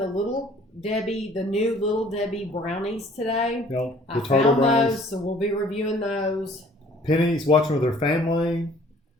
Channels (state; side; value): normal; both; correlation 0.55